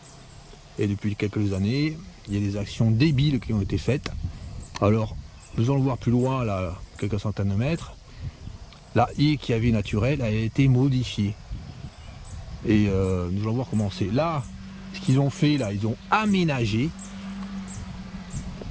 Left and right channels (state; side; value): identical; both; correlation 1.00